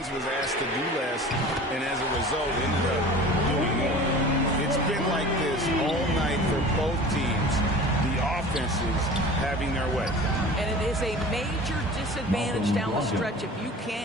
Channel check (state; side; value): normal; both; correlation 0.40